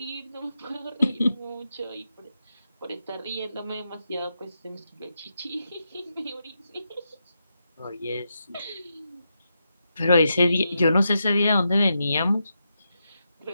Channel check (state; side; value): inverted; both; correlation -0.85